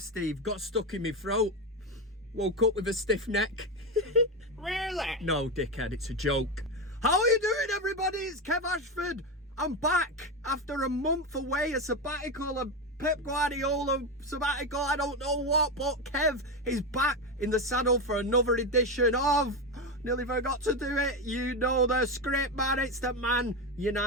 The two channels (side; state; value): both; normal; correlation 0.14